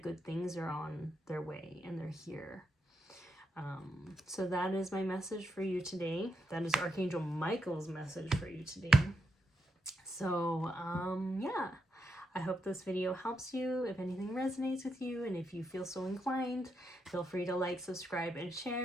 good things are on their way and they're here. So that is my message for you today. That is Archangel Michael's message for you today. So, yeah. I hope this video helps you. If anything resonates with you and if you feel so inclined, feel free to like, subscribe, and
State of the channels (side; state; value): both; normal; correlation 0.82